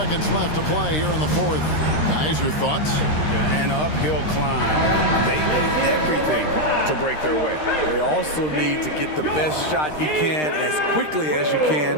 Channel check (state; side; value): late; right; 13 ms